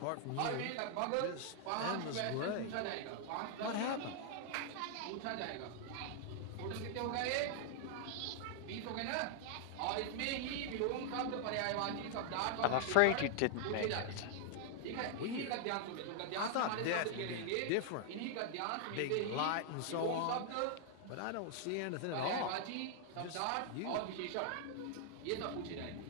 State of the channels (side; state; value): both; different; correlation 0.00